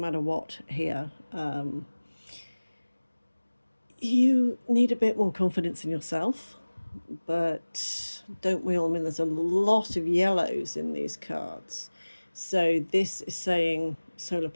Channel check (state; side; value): inverted; both; correlation -1.00